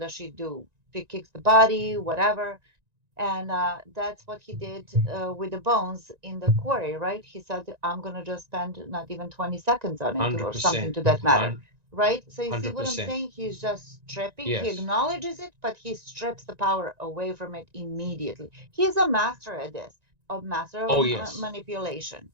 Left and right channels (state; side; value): late; left; 1.9 ms